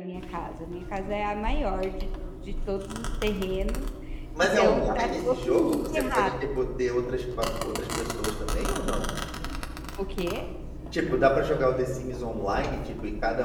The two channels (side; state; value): both; identical; correlation 1.00